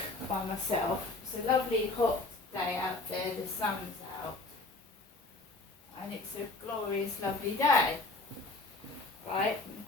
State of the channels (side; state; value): right; quieter; 3.3 dB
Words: by myself. It's a lovely hot day out there, the sun's out, and it's a glorious lovely day, right?